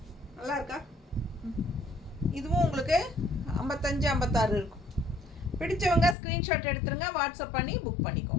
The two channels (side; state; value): right; drops out; at 6.2 s